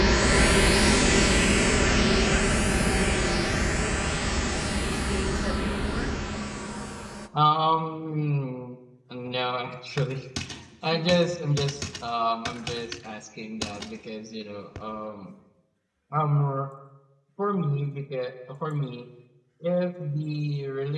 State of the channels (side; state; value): both; identical; correlation 1.00